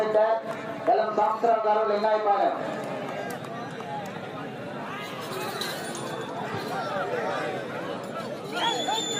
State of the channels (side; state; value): both; identical; correlation 1.00